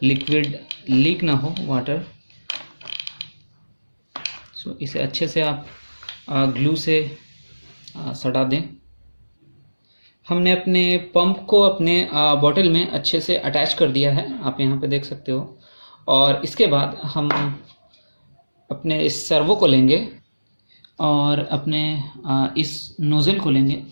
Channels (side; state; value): both; inverted; correlation -1.00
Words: लिक्विड लीक ना हो, वाटर। सो इसे अच्छे से आप ग्लू से सटा दें। हमने अपने पंप को अपने बॉटल में अच्छे से अटैच कर दिया है, आप यहाँ पे देख सकते हो। और इसके बाद हम अपने इस सर्वो को लेंगे और अपने इस नोज़ल को लेंगे।